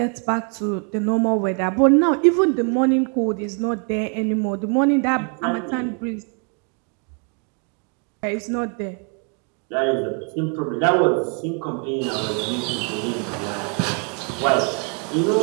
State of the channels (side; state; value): left; quieter; 38.3 dB